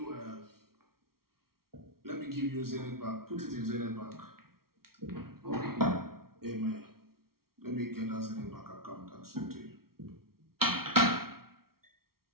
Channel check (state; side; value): late; left; 0.94 ms